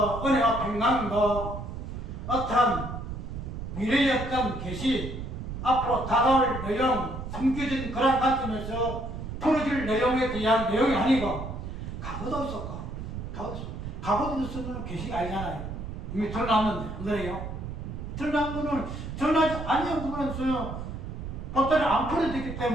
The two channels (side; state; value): right; noise; rumble, 7 dB below the sound